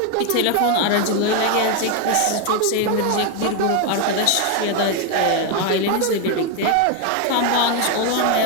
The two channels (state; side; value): different; both; correlation 0.01